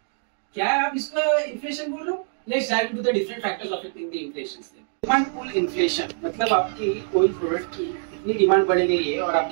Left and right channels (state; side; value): silent; left; digital silence